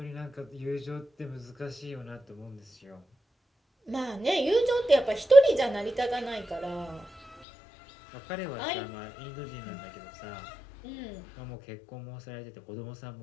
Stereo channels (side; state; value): right; drops out; at 7.4 s